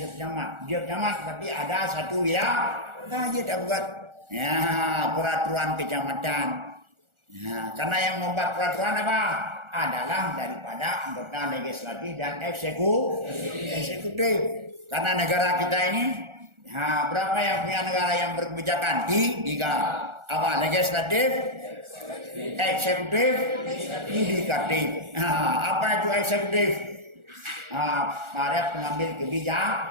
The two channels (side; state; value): left; late; 1.4 ms